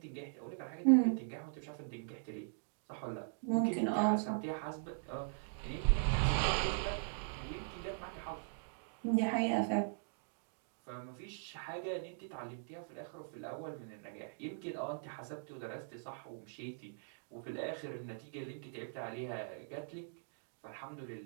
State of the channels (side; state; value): left; silent; digital silence